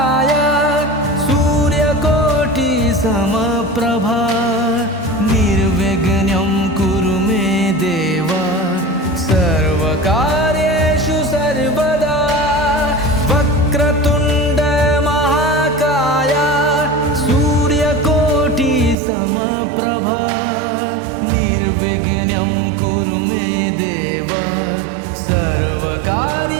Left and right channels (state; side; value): drops out; left; at 18.9 s